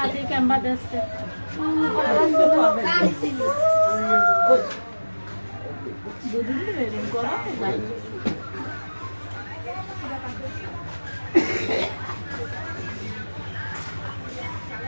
দিয়ে ক্যাম্বা দিচ্ছে দুদিন বেরিয়ে করো ভাই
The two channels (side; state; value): both; inverted; correlation -1.00